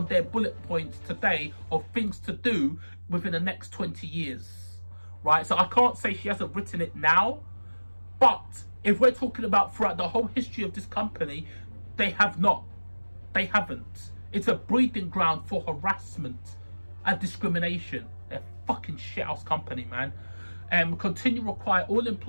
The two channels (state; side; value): inverted; both; correlation -1.00